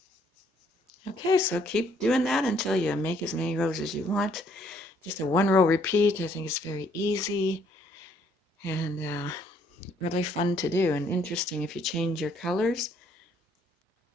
Okay, so keep doing that until you make as many rows as you want. Just a one row repeat. I think it's very easy and really fun to do, and interesting if you change your colors.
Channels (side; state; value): both; normal; correlation 0.66